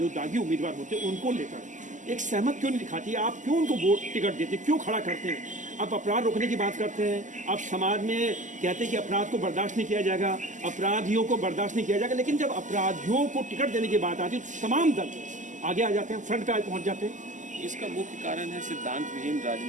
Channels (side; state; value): left; late; 0.37 ms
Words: दागी उम्मीदवार होते हैं उनको लेकर एक सहमत क्यों नहीं दिखाती? आप क्यों उनको वोट टिकट देते, क्यों खड़ा करते हैं? आप अपराध रोकने की बात करते हैं, आप समाज में कहते हैं कि अपराध को बर्दाश्त नहीं किया जाएगा, अपराधियों को बर्दाश्त नहीं किया जाएगा, लेकिन जब अपराधियों को टिकट देने की बात आती है तो तमाम दल आगे आ जाते हैं, फ्रंट पे पहुंच जाते हैं। इसका मुख्य कारण है सिद्धांत विहीन